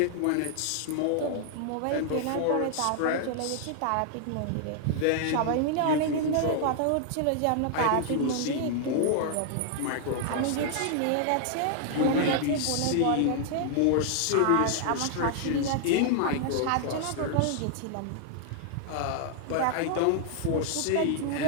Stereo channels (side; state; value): both; different; correlation 0.00